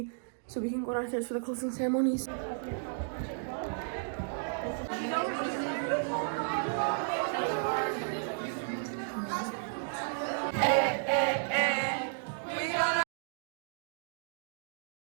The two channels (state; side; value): silent; left; digital silence